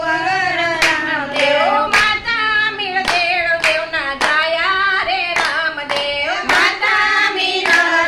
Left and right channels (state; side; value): identical; both; correlation 1.00